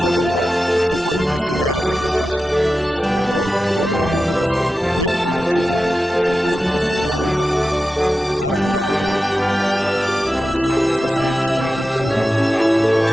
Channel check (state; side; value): normal; both; correlation 0.92